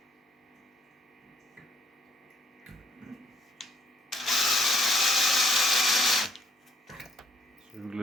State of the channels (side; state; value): both; normal; correlation 0.65